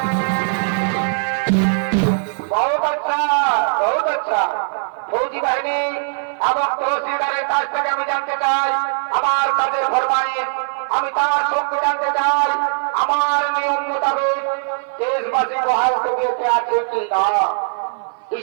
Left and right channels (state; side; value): silent; left; 57 dB below the other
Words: बहुत अच्छा फौजी বাহিনী এবং তহসিলদারের কাছ থেকে আমি জানতে চাই আমার কাজের ফরমাইশ, আমি তার সঙ্গে জানতে চাই আমার নিয়ম মোতাবেক দেশবাসী বহাল তবিয়তে আছে কি না।